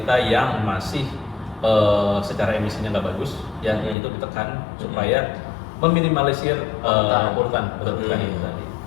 yang masih secara emisinya nggak bagus, ya itu ditekan supaya meminimalisir polutan betul itu tadi.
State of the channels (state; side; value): drops out; right; at 4.0 s